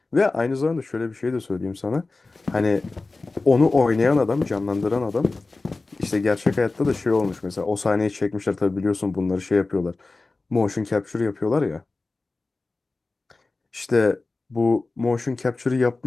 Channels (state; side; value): quieter; right; 3.5 dB